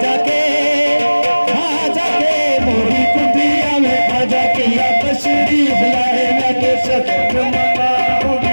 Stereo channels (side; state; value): both; inverted; correlation -1.00